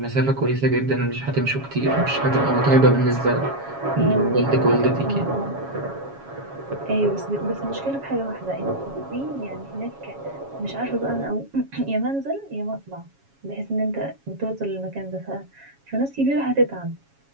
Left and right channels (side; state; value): left; late; 7.2 ms